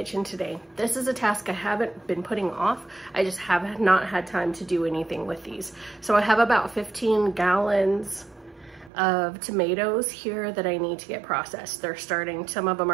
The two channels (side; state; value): left; drops out; at 8.9 s